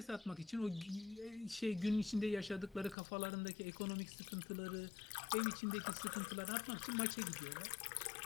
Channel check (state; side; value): drops out; right; at 3.0 s